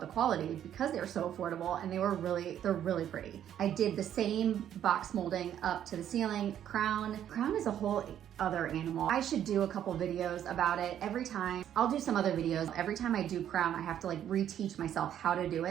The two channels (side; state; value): left; quieter; 10.4 dB